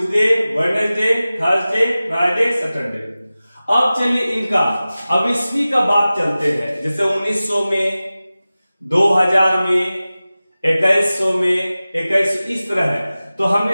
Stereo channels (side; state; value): both; inverted; correlation -0.97